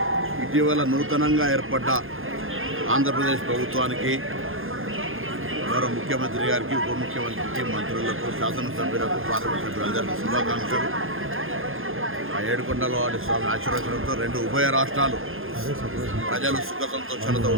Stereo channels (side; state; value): left; late; 0.60 ms